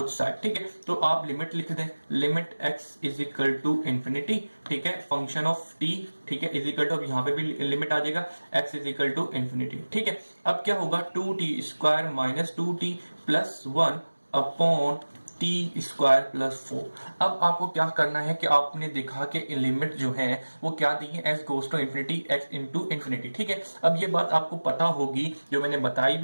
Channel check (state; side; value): inverted; both; correlation -1.00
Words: side. ठीक है, तो आप लिमिट लिख दें, limit x is equal to infinity. ठीक है, फंक्शन ऑफ t, ठीक है, इज इक्वल टू, अब यहां पे भी लिमिट आ जाएगा, x is equal to infinity. ठीक है, अब क्या होगा, 2t² minus 2t+1 upon t²+4। अब आपको क्या करना है कि आपने देखा कि लिमिट जो है वो क्या दी है, s goes to infinity, x into infinity. ठीक है, अब ये बात आपको पता होगी, जो मैंने बताई